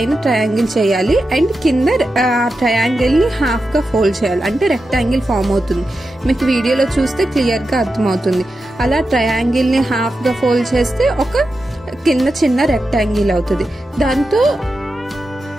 ట్రయాంగిల్ చేయాలి. అండ్ కింద ఆ ట్రయాంగిల్ని హాఫ్గా ఫోల్డ్ చేయాలి. అంటే రెక్టాంగిల్ ఫామ్ అవుతుంది. మీకు వీడియోలో చూస్తే క్లియర్గా అర్థమవుతుంది. అలా ట్రయాంగిల్ని హాఫ్గా ఫోల్డ్ చేస్తే ఒక కింద చిన్న రెక్టాంగిల్ అవుతుంది. దాంతో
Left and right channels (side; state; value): both; normal; correlation 0.90